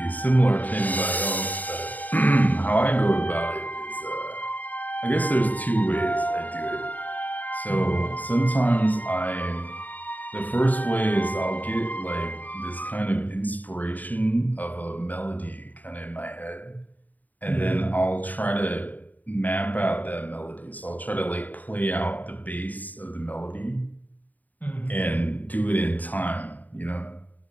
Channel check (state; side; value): late; right; 0.080 ms